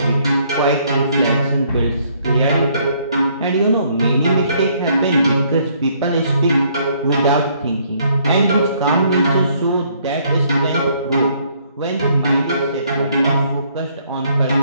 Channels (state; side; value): inverted; both; correlation -0.66